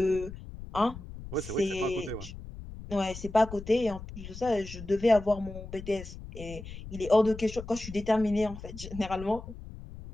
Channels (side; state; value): left; noise; rumble, 12 dB below the sound